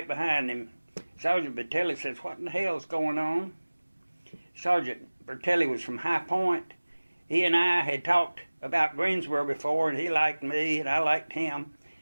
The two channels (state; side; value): inverted; both; correlation -1.00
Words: behind him. Sergeant Bertelli says, "What in the hell's going on?" Sergeant Bertelli was from High Point. He and I had talked about Greensboro before, and he liked me, and I liked him.